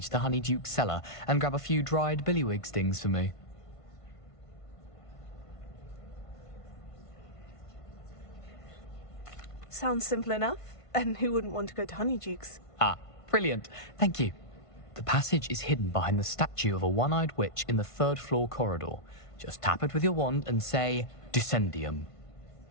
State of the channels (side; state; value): right; late; 1.5 ms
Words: to Honeyduke's cellar and grab a few dried billywig stings for me. Sounds simple enough. And who wouldn't want to go to Honeyduke's? Ah, brilliant. Thank you. The passage is hidden behind the statue of a one-eyed witch in the third-floor corridor. Just tap it with your wand and say, Descendium.